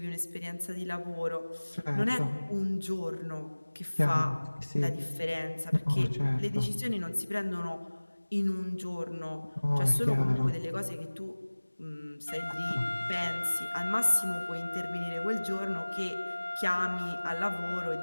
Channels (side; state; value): both; inverted; correlation -1.00